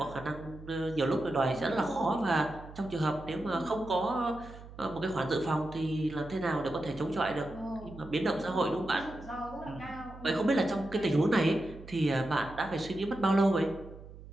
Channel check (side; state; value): right; noise; hum, 16 dB below the sound